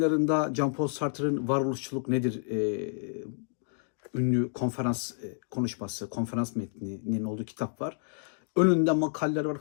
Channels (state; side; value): silent; right; digital silence